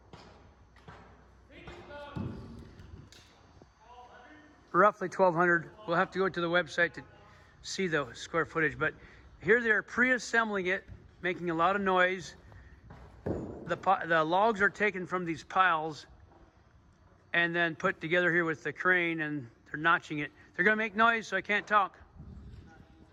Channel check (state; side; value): identical; both; correlation 1.00